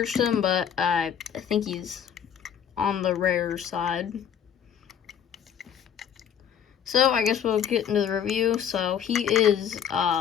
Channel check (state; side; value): quieter; right; 8.6 dB